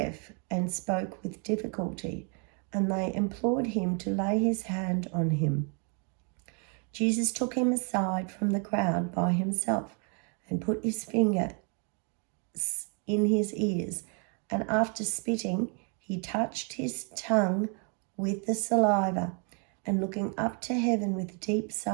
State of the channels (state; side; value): quieter; left; 37.8 dB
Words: and spoke with difficulty, and they implored him to lay his hand on him. Jesus took him aside from the crowd by himself and put his finger in his ears, and after spitting, he touched his tongue with the saliva, and looking up to heaven with a deep